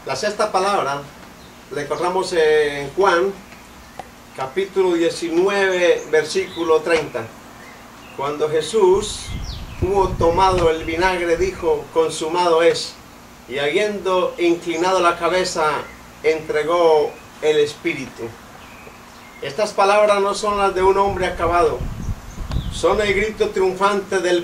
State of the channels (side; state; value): both; identical; correlation 1.00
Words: La sexta palabra la encontramos en Juan, capítulo 19, versículo 30. Cuando Jesús hubo tomado el vinagre, dijo: consumado es. Y habiendo inclinado la cabeza, entregó el Espíritu. Estas palabras no son las de un hombre acabado, son el grito triunfante del